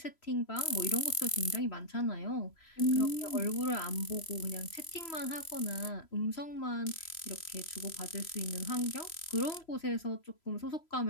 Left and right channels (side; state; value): right; late; 3.0 ms